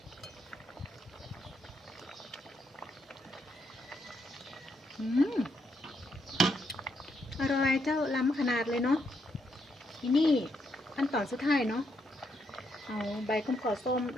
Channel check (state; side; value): normal; both; correlation 0.77